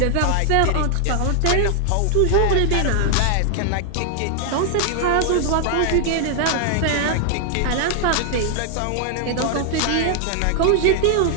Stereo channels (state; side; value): different; both; correlation 0.00